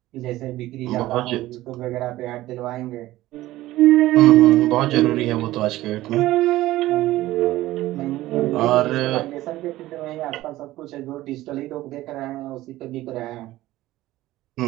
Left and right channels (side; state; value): left; quieter; 16.3 dB